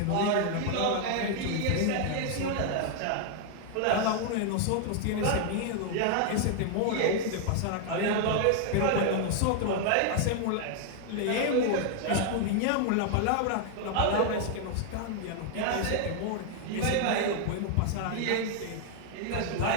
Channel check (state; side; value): different; both; correlation 0.00